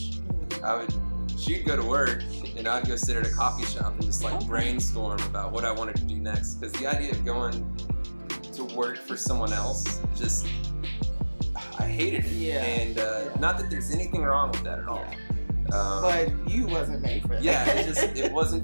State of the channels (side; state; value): both; inverted; correlation -1.00